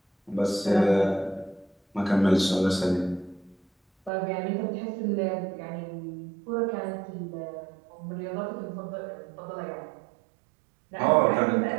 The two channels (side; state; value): left; drops out; at 4.1 s